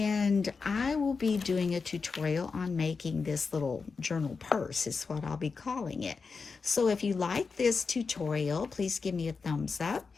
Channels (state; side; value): quieter; right; 4.9 dB